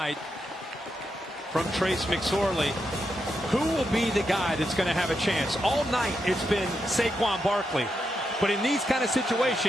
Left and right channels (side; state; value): both; normal; correlation 0.84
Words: from Trace McSorley. Who will be the guy that's going to have a chance? All night it's been Saquon Barkley. But in these kind of